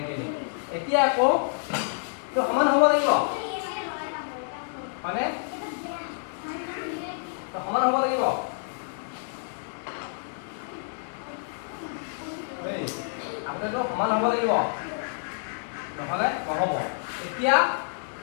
এতিয়া আকৌ তো সমান হ'ব লাগিব মানে তো সমান হ'ব লাগিব গোটেইটো সমান হ'ব লাগিব নহ'লে নহ'ব এতিয়া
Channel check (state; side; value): silent; right; digital silence